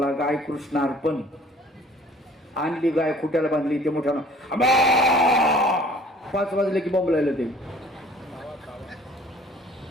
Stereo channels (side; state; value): both; normal; correlation 0.52